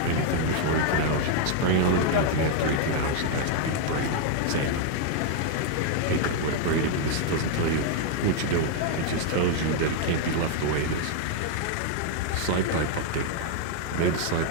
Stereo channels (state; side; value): different; both; correlation 0.00